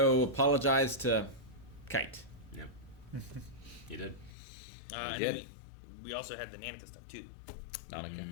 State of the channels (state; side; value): drops out; right; at 4.3 s